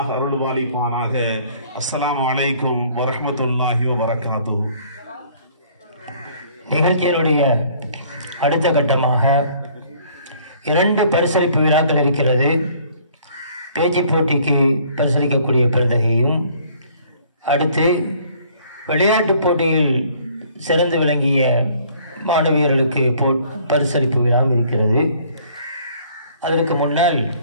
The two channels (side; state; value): both; inverted; correlation -0.58